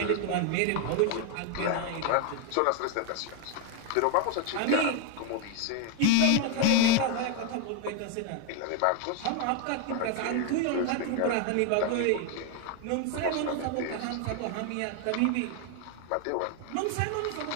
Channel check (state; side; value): different; both; correlation 0.01